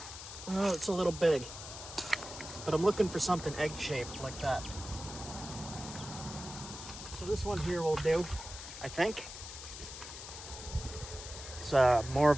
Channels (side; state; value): left; noise; hiss, 11 dB below the sound